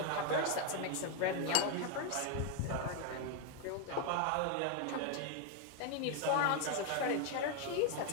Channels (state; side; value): different; both; correlation 0.01